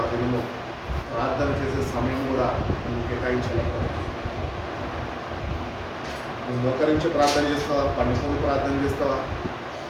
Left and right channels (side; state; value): both; identical; correlation 1.00